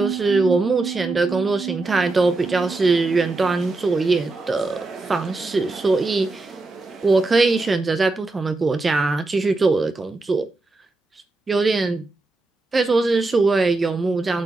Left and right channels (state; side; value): quieter; left; 3.3 dB